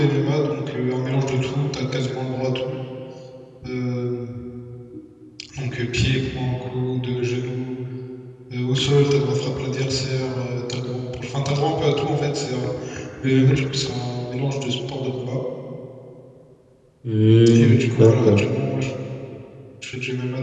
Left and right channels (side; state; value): both; identical; correlation 1.00